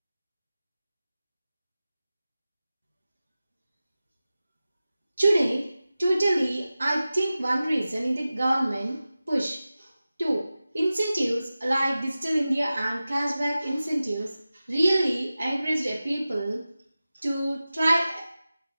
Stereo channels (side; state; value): both; inverted; correlation -0.95